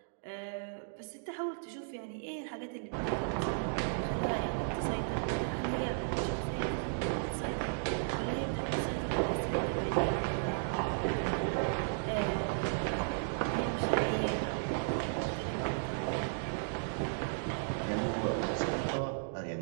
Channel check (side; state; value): left; silent; digital silence